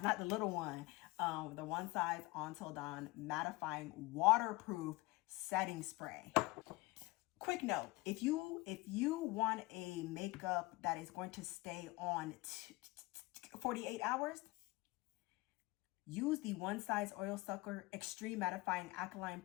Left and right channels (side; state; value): right; quieter; 22.3 dB